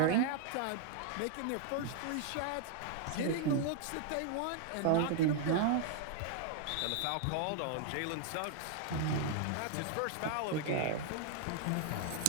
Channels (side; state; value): both; different; correlation 0.00